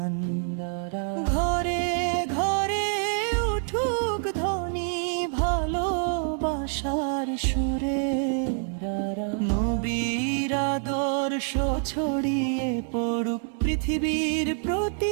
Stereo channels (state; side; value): silent; left; 60 dB below the other